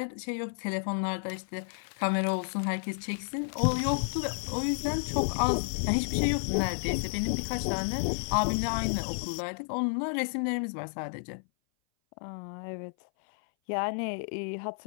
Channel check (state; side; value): silent; right; 57 dB below the other